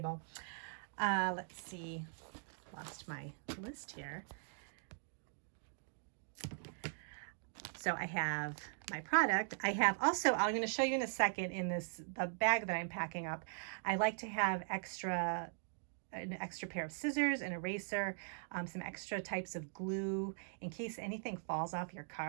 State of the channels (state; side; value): silent; left; digital silence